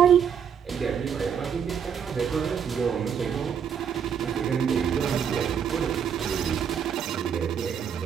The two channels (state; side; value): quieter; left; 7.8 dB